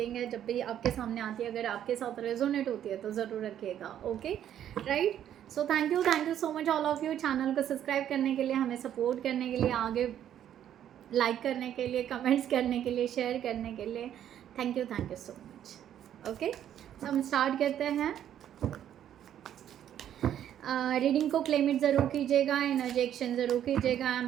है। जब भी आपके सामने आती है, अगर आपके साथ रेजोनेट होती है तो ज़रूर रखिएगा। Okay, right. So thank you so much all of you, channel को सब्सक्राइब करने के लिए, हमें सपोर्ट करने के लिए, आगे लाइक करने के लिए, कमेंट्स करने के लिए, शेयर करने के लिए। Thank you so much. Okay, तो हम स्टार्ट करते हैं। रीडिंग को क्लेम इट ज़रूर कीजिएगा, एनर्जी एक्सचेंज ज़रूर कीजिएगा। I am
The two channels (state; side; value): quieter; left; 10.5 dB